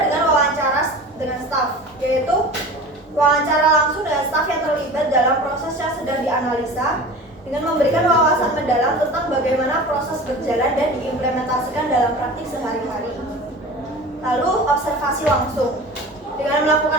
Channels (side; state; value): both; normal; correlation 0.36